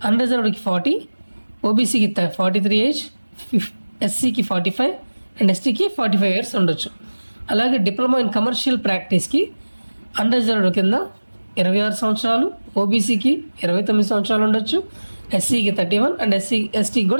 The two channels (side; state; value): both; inverted; correlation -1.00